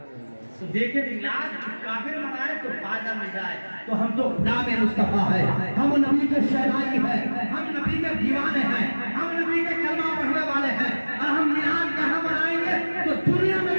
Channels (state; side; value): inverted; both; correlation -1.00